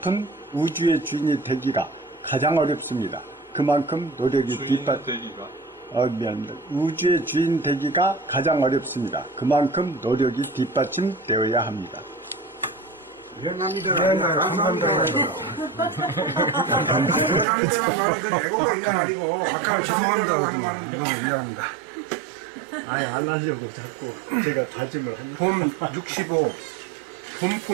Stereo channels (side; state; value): left; drops out; at 17.4 s